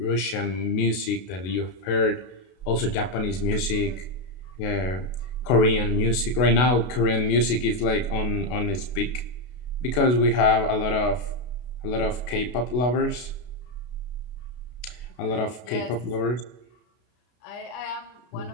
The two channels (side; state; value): right; late; 32 ms